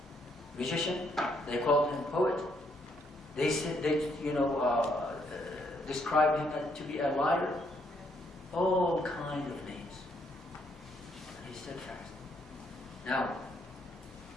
magician. They called him poet. They said described him to be a liar. All kind of names. And he stood fast. Now,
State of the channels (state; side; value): normal; both; correlation 0.72